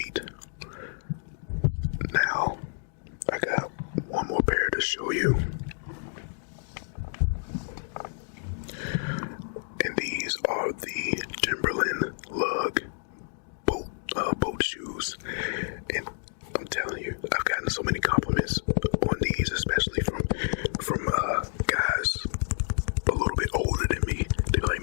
Now, I got one more pair to show you. And these are the Timberland lug boat shoes. And I'm telling you, I've gotten so many compliments on these, especially from guys a little bit older than me. They're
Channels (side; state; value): right; silent; digital silence